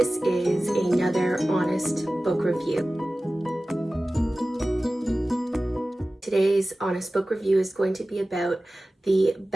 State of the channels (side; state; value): both; normal; correlation 0.96